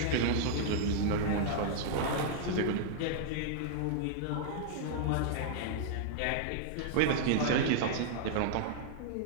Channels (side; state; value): both; different; correlation -0.01